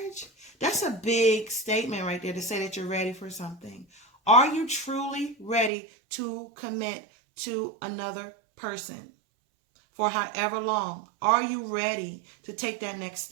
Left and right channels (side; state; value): left; drops out; at 5.7 s